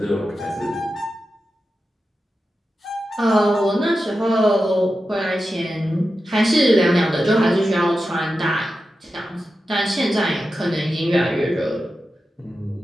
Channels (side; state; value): both; normal; correlation 0.91